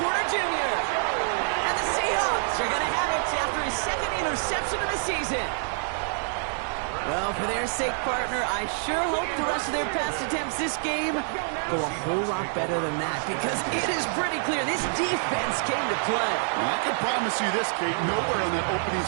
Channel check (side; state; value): left; silent; 60 dB below the other